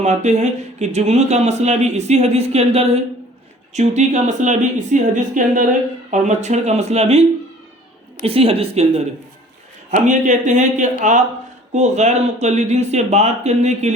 ہیں کہ جگنو کا مسئلہ بھی اسی حدیث کے اندر ہے، چونٹی کا مسئلہ بھی اسی حدیث کے اندر ہے، اور مچھر کا مسئلہ بھی اسی حدیث کے اندر ہے۔ ہم یہ کہتے ہیں کہ آپ کو غیر مقلدین سے بات کرنے کے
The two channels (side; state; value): both; normal; correlation 0.50